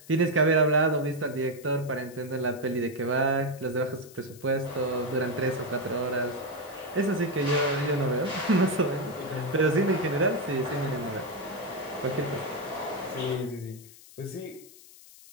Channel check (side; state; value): left; noise; hiss, 21 dB below the sound